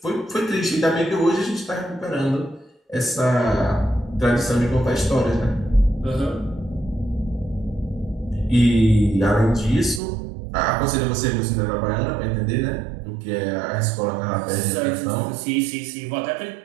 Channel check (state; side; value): drops out; left; at 10.0 s